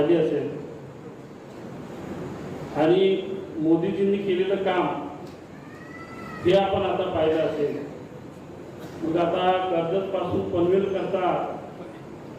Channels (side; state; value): both; identical; correlation 1.00